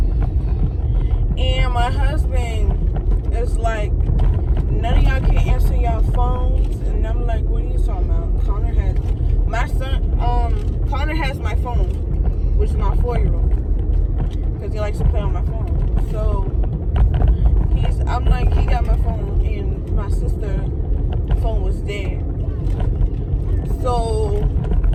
And my husband is like, none of y'all can answer y'all phones. And I'm like, what are you talking about? Connor has my phone, which is my 4-year-old, because he likes to play on my phone. So I'm like, he got my phone, and my sister's phone was dead. So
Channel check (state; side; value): identical; both; correlation 1.00